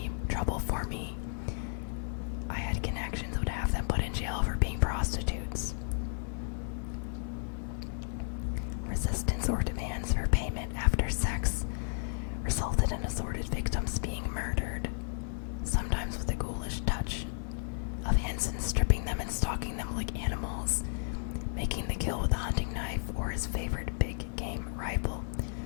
trouble for me, I had connections, would have them put in jail for being prostitutes. Resistance or demands for payment after sex resulted in assorted victims being murdered, sometimes with a ghoulish touch of Hansen stripping them and stalking them like animals, making the kill with a hunting knife or his favorite big game rifle.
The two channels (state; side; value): silent; right; 56 dB below the other